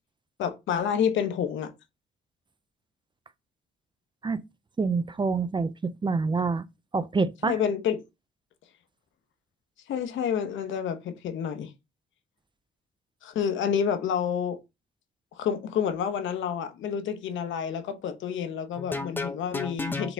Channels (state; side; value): quieter; right; 3.2 dB